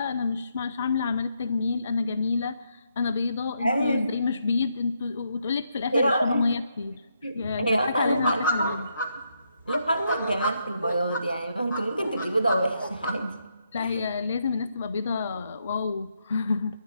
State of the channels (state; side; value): inverted; both; correlation -0.79